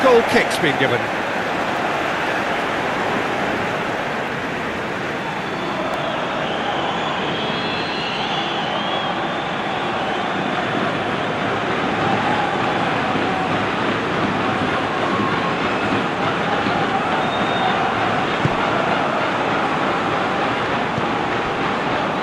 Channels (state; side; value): identical; both; correlation 1.00